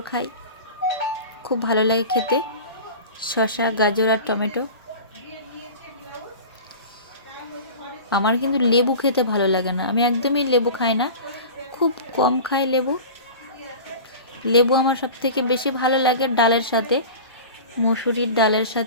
খাই, খুব ভালো লাগে খেতে শসা গাজর আর টমেটো। আমার কিন্তু লেবু খেতে ভালো লাগে না, আমি একদমই লেবু খাই না, খুব কম খাই লেবু। লেবু আমার সব থেকে বেশি ভালো লাগে ডালের সাথে, মুসুরির ডালের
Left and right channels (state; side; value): inverted; both; correlation -0.35